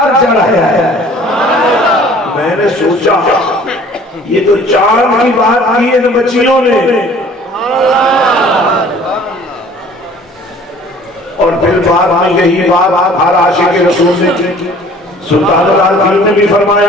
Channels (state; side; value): normal; both; correlation 0.51